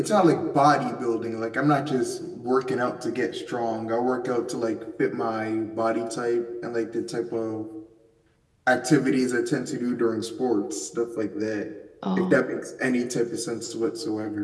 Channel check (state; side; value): identical; both; correlation 1.00